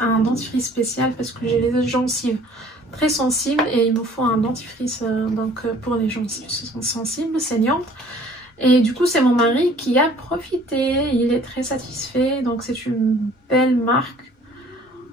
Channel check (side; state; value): both; normal; correlation 0.54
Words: dentifrice spécial parce que j'ai les gencives très sensibles et il me faut un dentifrice pour les gencives sensibles, saignantes. Et du coup, c'est mon mari qui a profité. Il est très satisfait. Donc, c'est une belle marque.